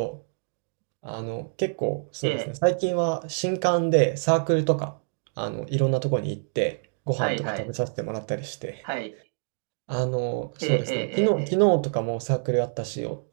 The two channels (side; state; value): left; silent; digital silence